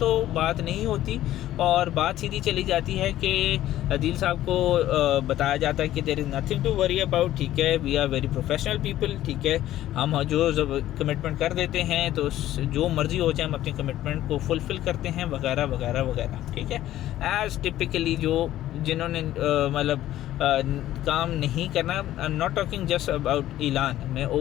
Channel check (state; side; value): quieter; right; 13.7 dB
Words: बात नहीं होती और बात सीधी चली जाती है कि अदील साहब को बताया जाता है कि there is nothing to worry about, ठीक है, we are very professional people, ठीक है, हम जो कमिटमेंट कर देते हैं तो जो मर्जी हो जाए हम अपनी कमिटमेंट को फुलफ़िल करते हैं वगैरह वगैरह वगैरह, ठीक है। एज़ टिपिकली जो जिन्होंने मतलब काम नहीं करना, I am not talking just about ऐलान, मैं